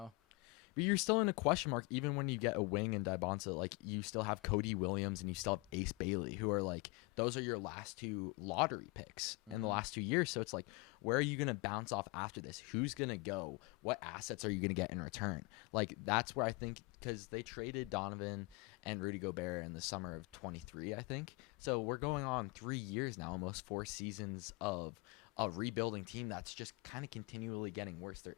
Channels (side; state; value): right; quieter; 26.7 dB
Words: But you're still in a question mark even when you get a wing and Dybonsa. Like, you still have Cody Williams and you still have Ace Bailey, who are like, those are your last 2 lottery picks in the last 2 years. So it's like, where are you going to bounce off after this? Who's going to go? What assets are you going to get in return? Like, that's where I think, because they traded Donovan and Rudy Gobert in the summer of 23, I think. So we're going on 3 years now, almost 4 seasons of a rebuilding team that's just kind of continually getting worse. They're